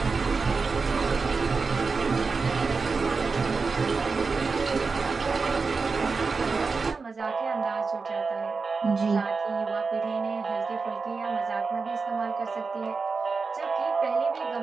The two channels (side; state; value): left; quieter; 4.5 dB